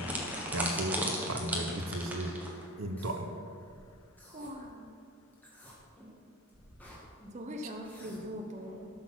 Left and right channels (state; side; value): normal; both; correlation 0.29